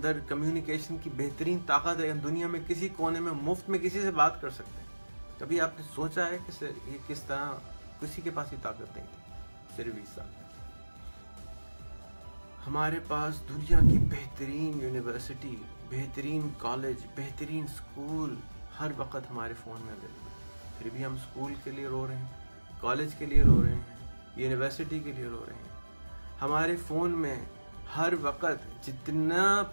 کمیونیکیشن کی بہترین طاقت ہے. ہم دنیا میں کسی کونے میں مفت میں کسی سے بات کر سکتے ہیں. کبھی آپ نے سوچا ہے کہ یہ کس طرح کسی کے پاس ہی طاقت نہیں تھی صرف 20 سال پہلے. ہمارے پاس دنیا کی بہترین یونیورسٹی، بہترین کالج، بہترین اسکول ہر وقت ہمارے فون میں اویلیبل ہے. پھر بھی ہم اسکول کے لیے رو رہے ہیں، کالج کے لیے رو رہے ہیں، یونیورسٹی کے لیے رو رہے ہیں. ہمارے فون میں ہر وقت جتنا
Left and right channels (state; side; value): inverted; both; correlation -1.00